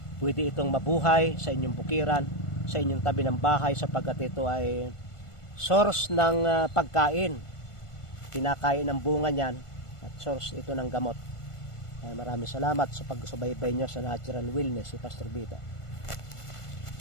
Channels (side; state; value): right; late; 1.5 ms